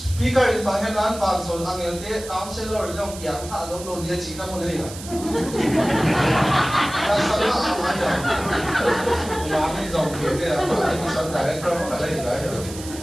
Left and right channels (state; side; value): noise; right; hiss, 13 dB below the sound